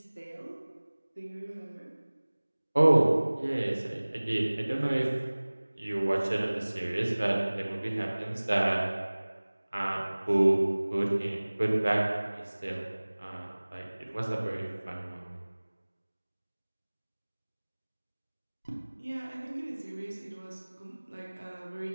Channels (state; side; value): inverted; both; correlation -1.00